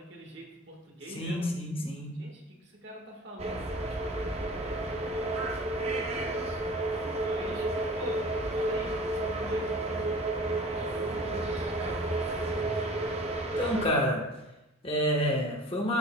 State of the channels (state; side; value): normal; both; correlation 0.42